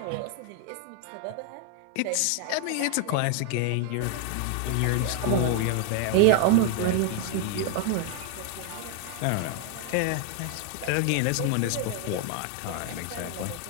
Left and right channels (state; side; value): different; both; correlation 0.00